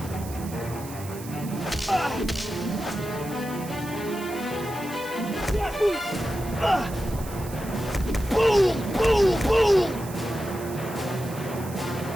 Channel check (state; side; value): noise; right; hiss, 15 dB below the sound